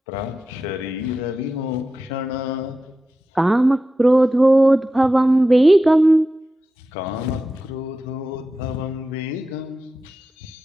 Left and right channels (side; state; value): both; normal; correlation 0.93